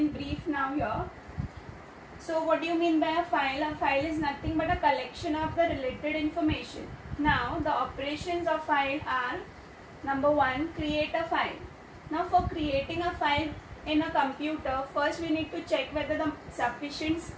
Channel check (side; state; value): both; identical; correlation 1.00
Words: brief now here. So what do you mean by a file? A file is nothing but a collection of the related information. Now the operations of file are: number 1, create a file. Now for creating a file in a computer, first we need to check whether the sufficient